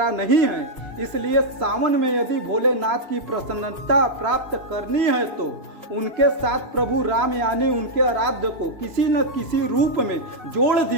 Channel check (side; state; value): left; late; 3.0 ms